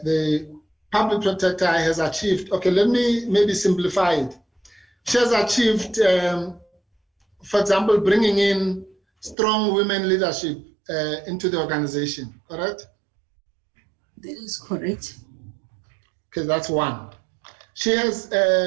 public protector has achieved, okay, let me maybe simplify it. She has achieved, for example, bringing in strong women leadership into the organization, correct? That is correct. Okay, that's one. She has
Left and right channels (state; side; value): drops out; left; at 9.3 s